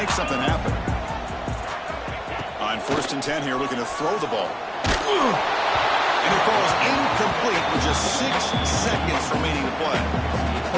something happen? On 1st and 10 here, looking to throw the ball. And it falls incomplete with just 6 seconds remaining to play.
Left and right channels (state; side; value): identical; both; correlation 1.00